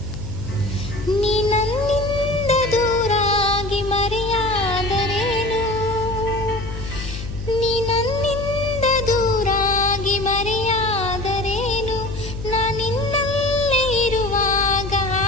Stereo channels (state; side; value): noise; left; hum, 8 dB below the sound